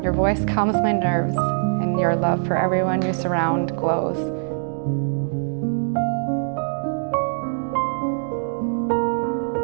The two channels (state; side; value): silent; left; digital silence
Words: Your voice calms my nerves, and your love for everyone you surround glows.